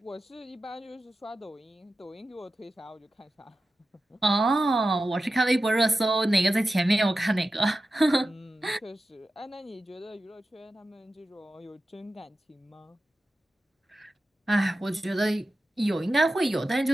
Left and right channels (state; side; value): normal; both; correlation 0.93